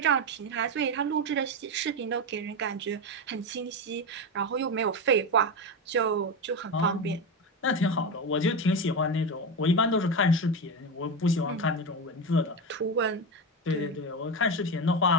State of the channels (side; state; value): both; normal; correlation 0.16